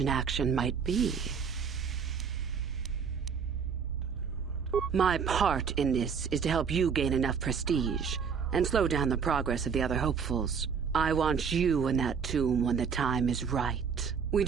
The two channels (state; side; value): quieter; left; 6.5 dB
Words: action might be. My part in this is to help you gain enough prestige and slow down the progress of the other hopefuls. I want you in that tomb when the time is right. We